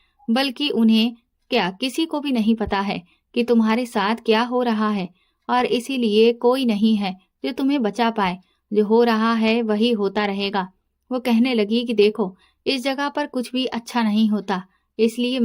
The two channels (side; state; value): both; identical; correlation 1.00